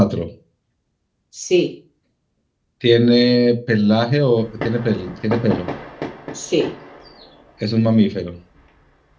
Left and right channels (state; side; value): identical; both; correlation 1.00